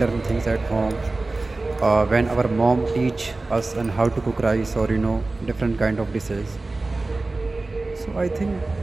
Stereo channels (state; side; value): quieter; left; 3.3 dB